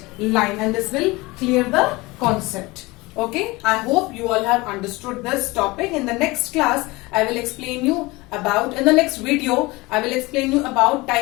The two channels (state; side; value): quieter; right; 22.5 dB